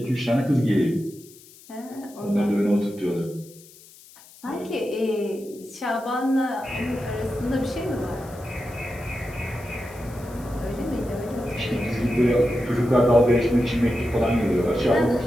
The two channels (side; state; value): left; noise; hiss, 22 dB below the sound